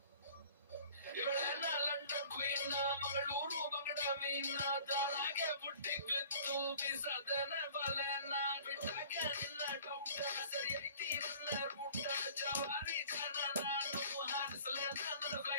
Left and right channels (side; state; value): both; inverted; correlation -0.49